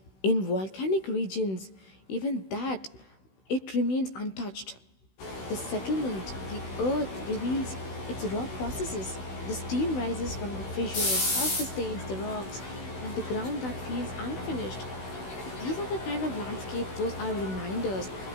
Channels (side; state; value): right; late; 16 ms